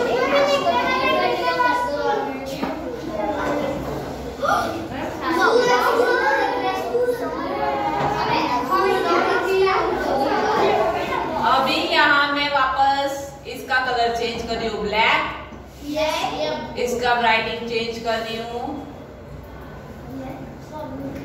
अभी यहाँ मैं वापस इसका कलर चेंज कर रही हूँ ब्लैक। इसका राइटिंग चेंज कर रही हूँ।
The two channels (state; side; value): identical; both; correlation 1.00